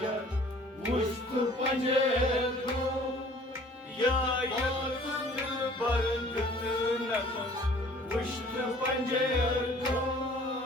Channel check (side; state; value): both; normal; correlation 0.52